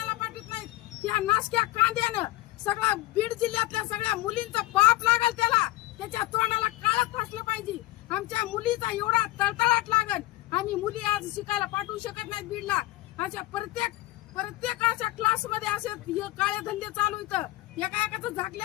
पाठवित नाहीत. त्या नाशक्या कांद्यानं सगळा बीड जिल्ह्यातल्या सगळ्या मुलींचा पाप लागल त्याला त्याच्या तोंडाला काळच फासलं पाहिजे. आमच्या मुलीचा एवढा तळतळाट लागल आणि मुली आज शिकायला पाठवू शकत नाहीत बीडला. अशा प्रत्येक अशा क्लास मध्ये असे काळे धंदे चालू इथं एका एकाचं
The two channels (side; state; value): right; quieter; 18.5 dB